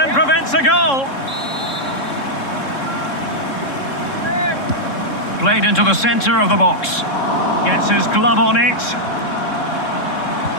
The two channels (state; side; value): late; right; 3.7 ms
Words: prevents a goal. Played into the centre of the box. Gets his glove on it.